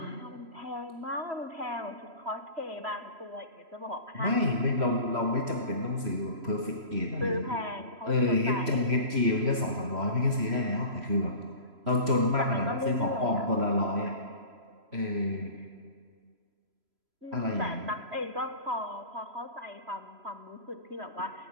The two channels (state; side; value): late; left; 3.0 ms